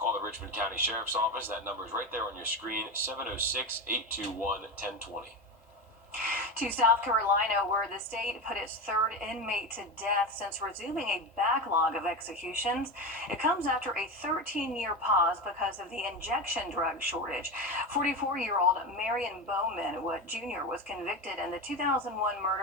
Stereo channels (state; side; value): normal; both; correlation 0.21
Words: the Richmond County Sheriff's Office. That number is right there on your screen, 706-821-1020. To South Carolina, where the state put its third inmate to death since resuming a backlog of executions. It comes after a 13-year pause because of the injection drug shortage. 44-year-old Marion Bowman Jr. was convicted in the 2001